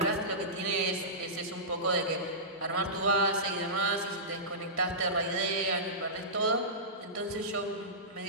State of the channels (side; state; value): both; normal; correlation -0.18